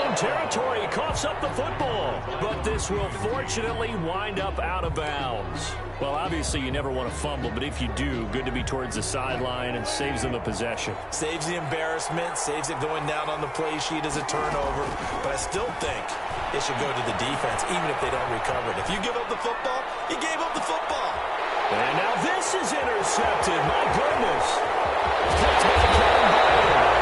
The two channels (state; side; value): identical; both; correlation 1.00